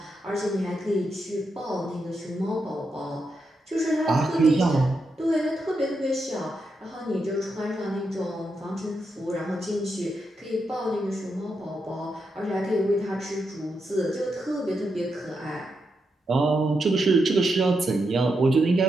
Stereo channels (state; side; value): normal; both; correlation 0.84